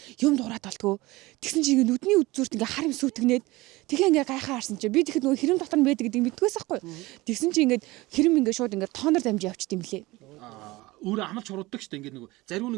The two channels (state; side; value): quieter; left; 20.6 dB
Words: юм дуурайд болтгоо. Тэгсэн чи ингээ нүдний үдзүүрт ингээ хар юм сүйтгнээд тэгээ ингээ гайхаа харсан чи би тэгэхэд нөгөө хэрэм дотор нь байдаг гэдгийг мэддгээс байхгүй. Тэгсэн чи ингээ хэрэм ингээ шууд ингээ тоонор дамжиж явчих юм лээ. Өөрөө амлж хурууддаг штэ ингээд нөгөө зариу